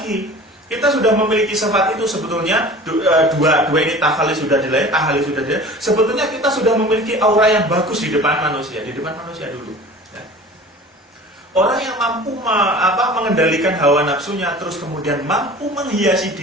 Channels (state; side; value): normal; both; correlation 0.41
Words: kita sudah memiliki sifat itu sebetulnya dua ini tahalli sudah dilai, tahalli sudah dilai. Sebetulnya kita sudah memiliki aura yang bagus di depan manusia dulu. Ya. Orang yang mampu mengendalikan hawa nafsunya, terus kemudian mampu menghiasi